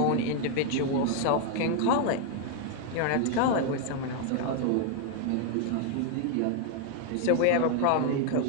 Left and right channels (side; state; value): both; different; correlation 0.00